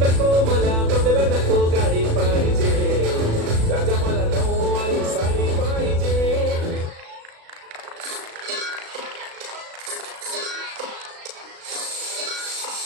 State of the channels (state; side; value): late; left; 36 ms